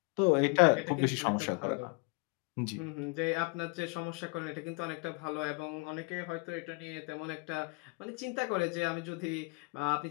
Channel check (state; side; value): quieter; right; 30.4 dB